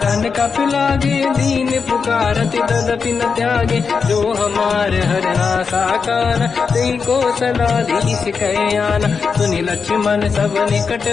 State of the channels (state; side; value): quieter; right; 5.5 dB